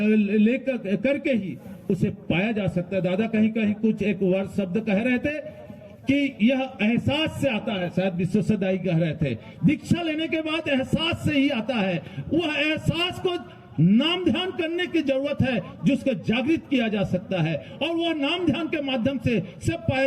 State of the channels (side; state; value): both; identical; correlation 1.00